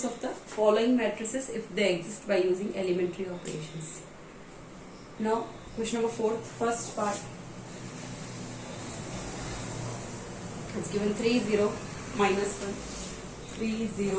of the following matrices if they exist by using elementary operations. Now, question number 4, first part. It's given 3, 0, minus 1, 3,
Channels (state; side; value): identical; both; correlation 1.00